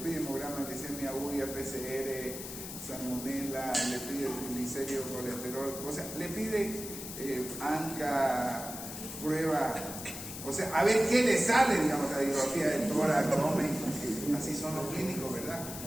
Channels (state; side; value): noise; left; hiss, 9 dB below the sound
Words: hemograma, glicemia, urea, PCR, salmonela, le pide triglicéridos, colesterol, o sea, le pide ANCA, prueba, o sea, a ver qué le sale, digamos, radiografía del tórax, abdomen. Así son los clínicos, ¿verdad?